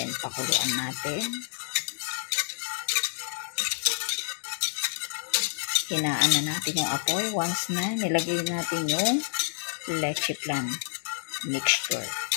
pakuluan natin. Hinaan na natin yung apoy. Once na, nilagay natin yung leche flan mixture.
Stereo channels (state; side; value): silent; right; 55 dB below the other